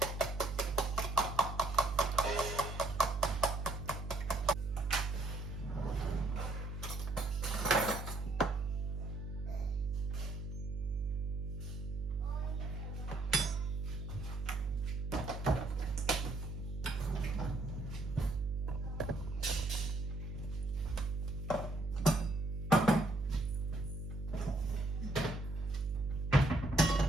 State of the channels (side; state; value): right; noise; hum, 5 dB below the sound